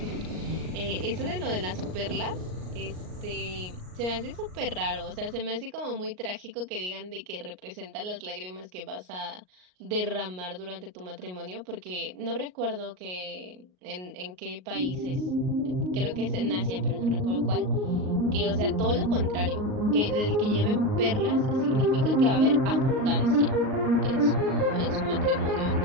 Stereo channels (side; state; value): left; late; 38 ms